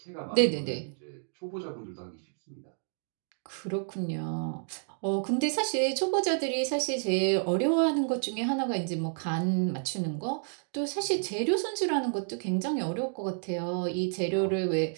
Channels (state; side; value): silent; left; 58 dB below the other